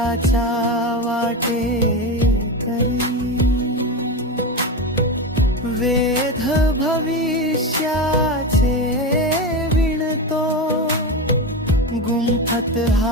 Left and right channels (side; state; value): both; normal; correlation 0.19